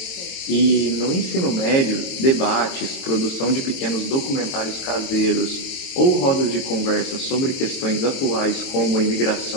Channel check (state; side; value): late; right; 22 ms